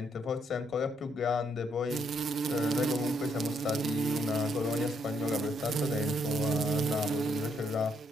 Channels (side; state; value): both; normal; correlation 0.74